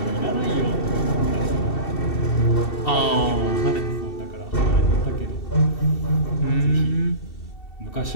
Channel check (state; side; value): late; right; 2.7 ms